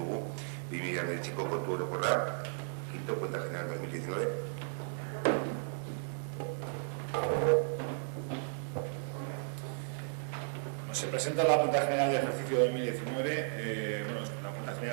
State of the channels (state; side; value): silent; left; digital silence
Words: 2019ko kontu orokorra, quinto, cuenta general 2019. Se presenta la cuenta general de ejercicio 2019. Bueno, la cuenta